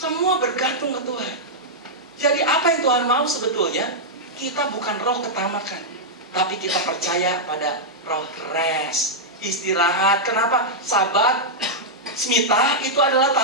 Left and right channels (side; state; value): both; normal; correlation -0.07